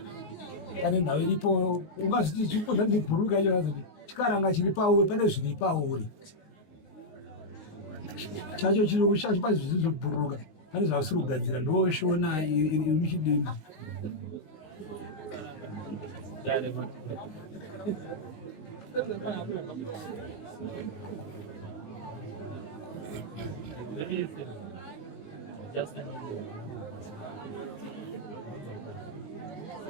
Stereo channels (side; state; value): right; late; 19 ms